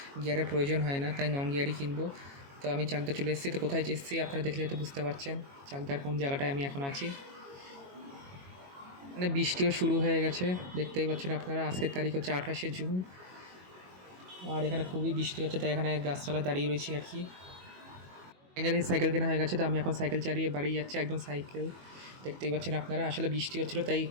গিয়ারের প্রয়োজন হয় না, তাই নন গিয়ারই কিনবো। তো আমি চাকদা চলে এসেছি। তো কোথায় এসেছি আপনারা দেখলে হয়তো বুঝতে পারছেন চাকদার কোন জায়গাটায় আমি এখন আছি। মানে বৃষ্টিও শুরু হয়ে গেছে, দেখতেই পাচ্ছেন আপনারা। আজকের তারিখ হচ্ছে 28শে জুন, আর এখানে খুবই বৃষ্টি হচ্ছে, তাই এখানে গাছতলায় দাঁড়িয়ে রয়েছি আর কি। ফাইনালি সাইকেল কেনা হয়ে গেছে, তো আমি এখন সাইকেল চালিয়ে বাড়ি যাচ্ছি। একদম সাইকেল দেখতেই পাচ্ছেন আপনারা। আসলে বৃষ্টি হচ্ছিলো তাই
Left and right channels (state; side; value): late; left; 22 ms